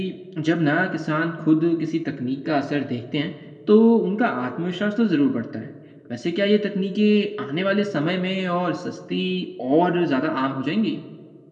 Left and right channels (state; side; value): identical; both; correlation 1.00